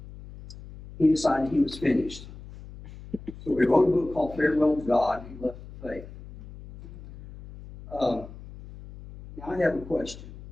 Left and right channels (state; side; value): noise; left; hum, 16 dB below the sound